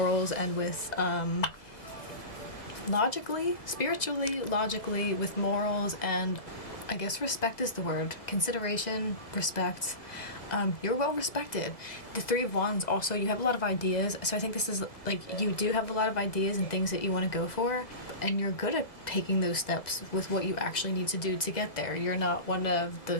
and with logically, spiritually, logically, with morals, and I guess respect is the word. Consideration, respect. You're well respected. The Three of Wands also, you have a lot of ideas. So I think this is like, you do have a lot of ideas and things that you want to go for. And you're good at taking those steps with what you actually need to do to get there. You're not one of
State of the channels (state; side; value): late; right; 1.8 ms